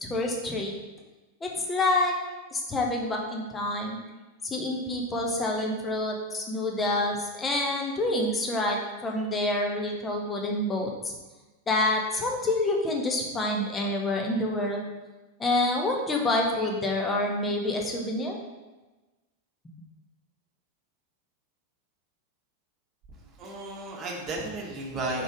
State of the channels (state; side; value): normal; both; correlation 0.24